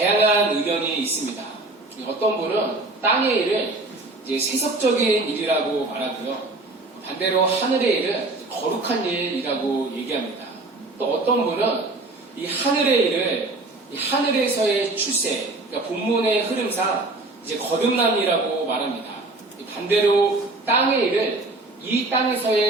의견이 있습니다. 어떤 분은 땅의 일을 이제 세속적인 일이라고 말하고요. 반대로 하늘의 일은 거룩한 일이라고 얘기합니다. 또 어떤 분은 이 하늘의 일을 이 하늘에서의 출세, 그러니까 본문의 흐름상 이제 거듭남이라고 말합니다. 반대로 땅의 일을 이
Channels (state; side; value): quieter; left; 3.0 dB